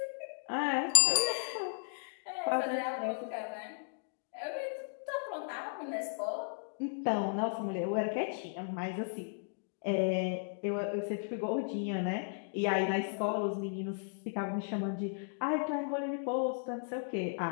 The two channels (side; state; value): right; silent; digital silence